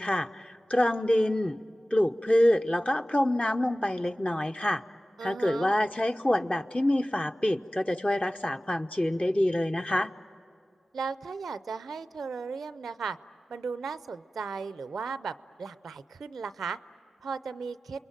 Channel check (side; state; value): both; normal; correlation 0.96